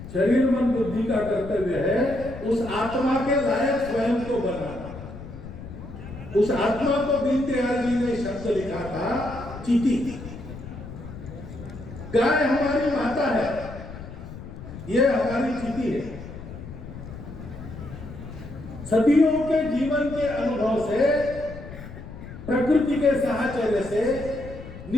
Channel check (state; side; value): noise; left; rumble, 12 dB below the sound